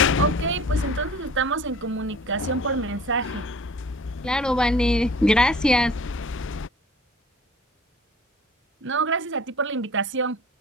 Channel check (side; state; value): both; normal; correlation 0.45